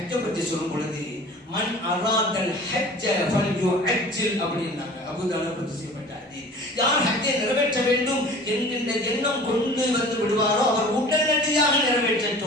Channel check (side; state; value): both; normal; correlation 0.43